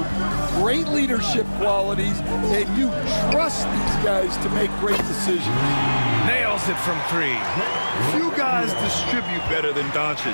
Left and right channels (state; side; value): inverted; both; correlation -1.00